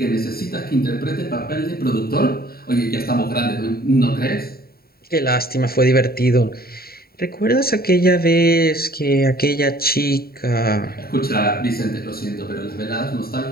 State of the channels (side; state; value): right; late; 0.44 ms